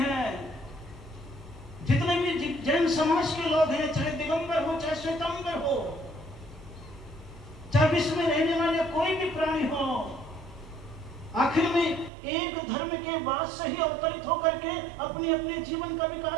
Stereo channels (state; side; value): drops out; left; at 12.1 s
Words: जितने भी जैन समाज के लोग हैं, चाहे दिगंबर हो चाहे श्वेतांबर हो, चाहे विश्व में रहने वाले कोई भी प्राणी हो, आखिर में एक धर्म के बाद से ही अवतरित होकर के अपने अपने जीवन का